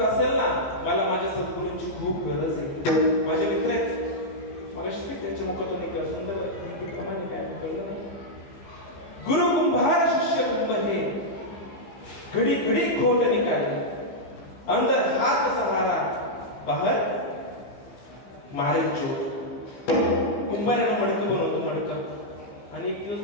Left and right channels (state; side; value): late; right; 15 ms